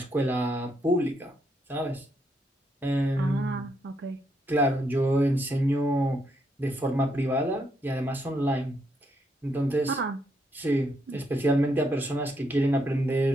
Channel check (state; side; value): normal; both; correlation 0.77